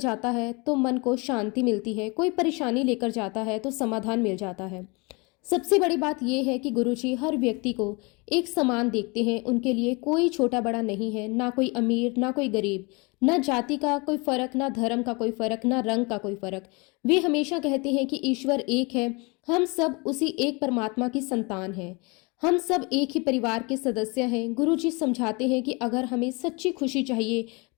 है तो मन को शांति मिलती है, कोई परेशानी लेकर जाता है तो समाधान मिल जाता है। सबसे बड़ी बात यह है कि गुरुजी हर व्यक्ति को एक समान देखते हैं। उनके लिए कोई छोटा बड़ा नहीं है, ना कोई अमीर ना कोई गरीब, ना जाति का कोई फर्क, ना धर्म का कोई फर्क, ना रंग का कोई फर्क। वे हमेशा कहते हैं कि ईश्वर एक है, हम सब उसी एक परमात्मा की संतान हैं, हम सब एक ही परिवार के सदस्य हैं। गुरुजी समझाते हैं कि अगर हमें सच्ची खुशी चाहिए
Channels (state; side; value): quieter; right; 28.5 dB